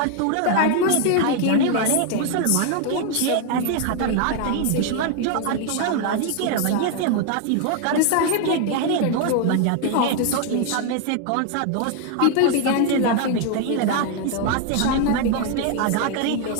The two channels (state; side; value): different; both; correlation 0.00